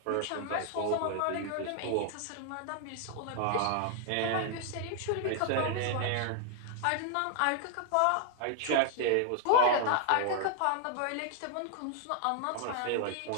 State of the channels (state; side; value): different; both; correlation 0.00